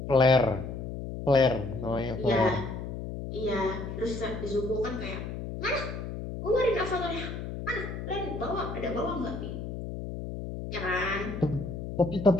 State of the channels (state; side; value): noise; left; hum, 7 dB below the sound